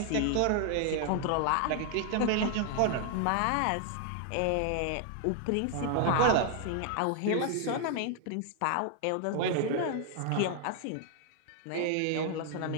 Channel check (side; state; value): both; different; correlation 0.00